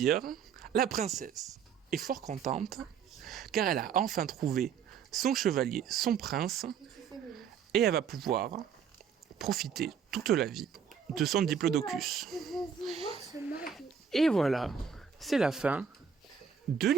La princesse est fort contente, car elle a enfin trouvé son chevalier, son prince, et elle va pouvoir profiter toute la vie de son diplodocus. Et voilà, c'est la fin de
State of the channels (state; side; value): quieter; left; 7.0 dB